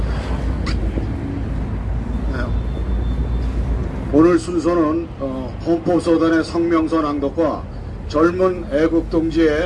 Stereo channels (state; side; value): identical; both; correlation 1.00